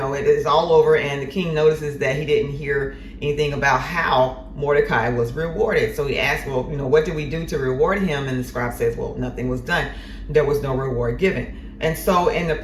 is all over, and the king notices that he didn't hear anything about how Mordecai was rewarded. So he asks, well, what did we do to reward him? And the scribe says, well, nothing was done. There was no reward given. And so in the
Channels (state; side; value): identical; both; correlation 1.00